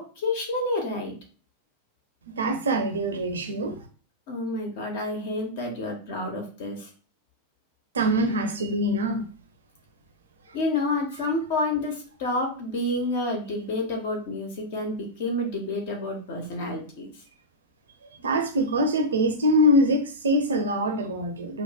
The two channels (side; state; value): both; normal; correlation -0.11